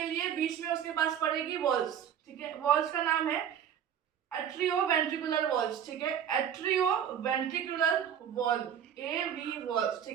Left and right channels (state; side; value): quieter; left; 9.0 dB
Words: लिए बीच में उसके पास पड़ेगी वॉल्स। ठीक है, वॉल्स का नाम है एट्रियो वेंट्रिकुलर वॉल्स। ठीक है, एट्रियो वेंट्रिकुलर वॉल, एवी वॉल्स।